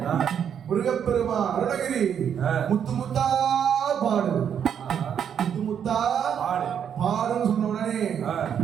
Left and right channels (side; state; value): left; quieter; 8.3 dB